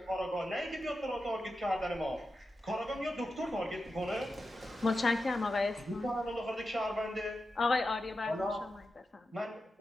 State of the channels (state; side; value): normal; both; correlation 0.90